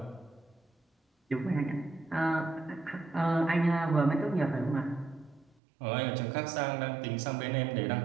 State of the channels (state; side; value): drops out; left; at 5.6 s